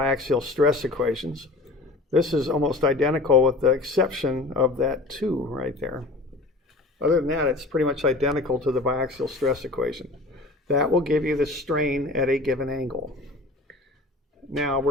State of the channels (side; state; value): right; quieter; 3.1 dB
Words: stress equations. This is almost identical with the exception of that 2 right there. Other than that, it's pretty much identical to the biaxial stress equation. That will give you the strain at a given angle. Now,